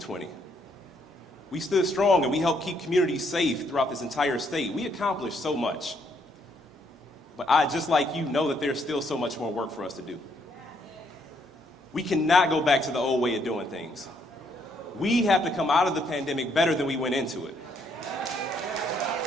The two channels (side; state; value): both; normal; correlation 0.71